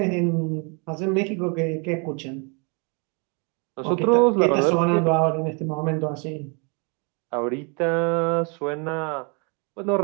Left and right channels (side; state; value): left; quieter; 34.4 dB